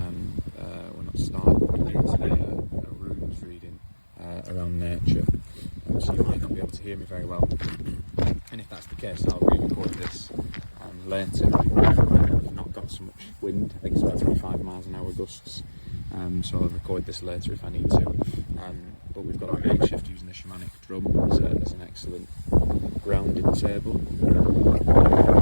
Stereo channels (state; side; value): inverted; both; correlation -1.00